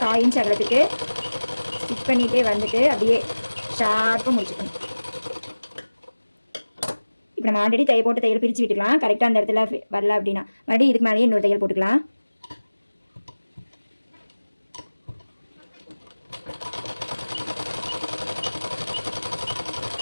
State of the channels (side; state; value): both; inverted; correlation -1.00